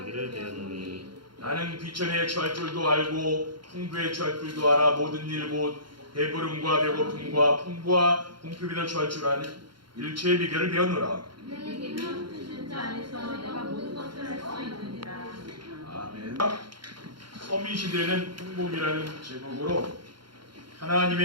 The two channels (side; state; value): left; late; 0.73 ms